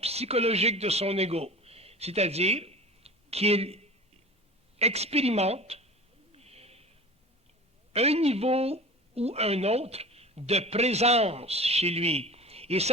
de son ego, c'est-à-dire qu'il expérimente un niveau ou un autre de présence chez lui. Et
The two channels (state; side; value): normal; both; correlation 0.37